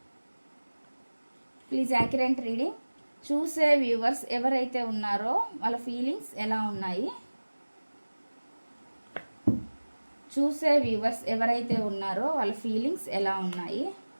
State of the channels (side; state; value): both; inverted; correlation -1.00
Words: Please accurate reading. చూసే వ్యూవర్స్ ఎవరైతే ఉన్నారో వాళ్ళ ఫీలింగ్స్ ఎలా ఉన్నాయి? చూసే వ్యూవర్స్ ఎవరైతే ఉన్నారో వాళ్ళ ఫీలింగ్స్ ఎలా ఉన్నాయి?